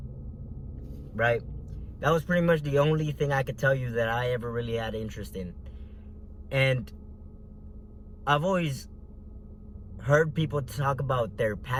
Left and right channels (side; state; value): both; identical; correlation 1.00